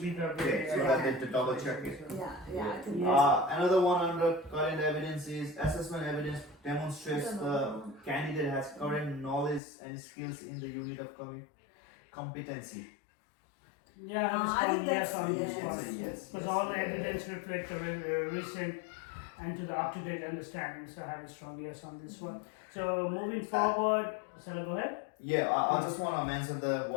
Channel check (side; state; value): right; drops out; at 9.6 s